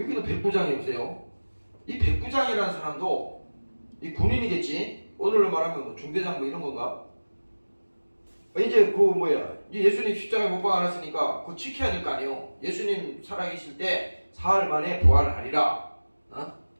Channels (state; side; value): inverted; both; correlation -1.00